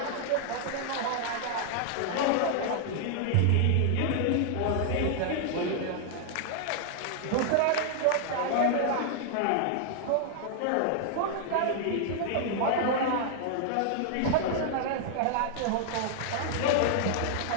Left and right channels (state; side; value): different; both; correlation -0.01